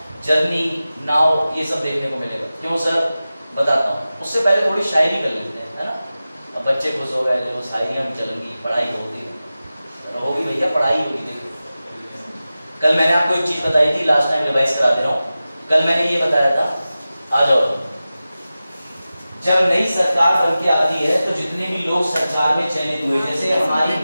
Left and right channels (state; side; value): inverted; both; correlation -0.95